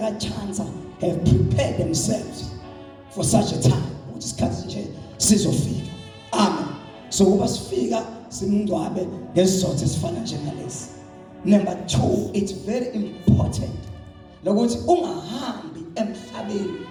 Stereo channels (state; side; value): identical; both; correlation 1.00